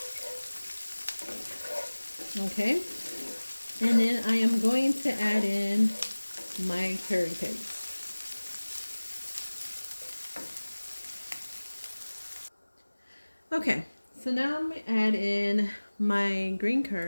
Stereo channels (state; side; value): inverted; both; correlation -1.00